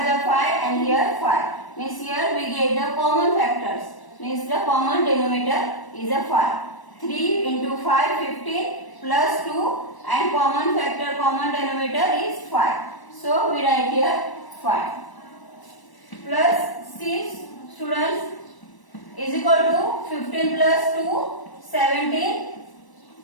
is 5 and here 5. Means here we get the common factors. Means the common denominator is a 5. 3 into 5 15 plus 2 and common factor common denominator is 5. So we write here 5 plus 6 students is equal to 15 plus 2 17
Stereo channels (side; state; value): right; late; 1.0 ms